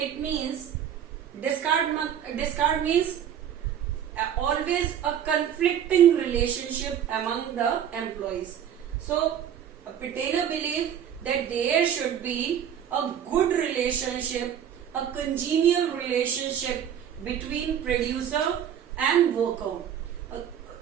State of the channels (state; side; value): quieter; left; 9.3 dB